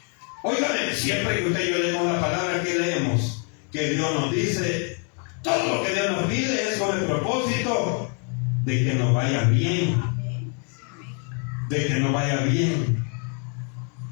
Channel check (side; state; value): right; quieter; 39.9 dB